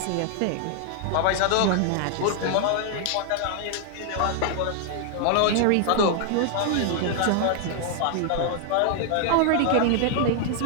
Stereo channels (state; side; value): different; both; correlation 0.00